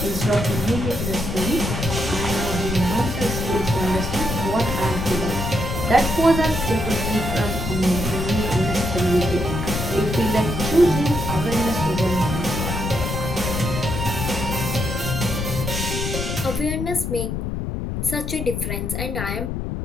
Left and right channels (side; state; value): left; noise; rumble, 3 dB below the sound